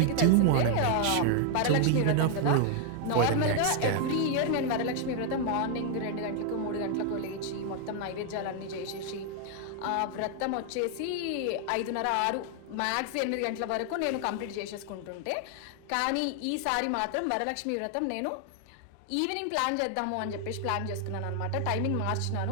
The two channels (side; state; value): both; different; correlation 0.00